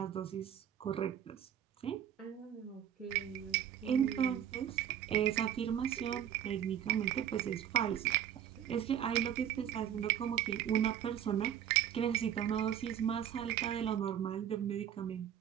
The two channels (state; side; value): quieter; left; 10.0 dB